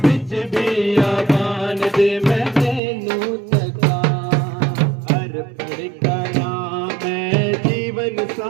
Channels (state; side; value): drops out; left; at 2.8 s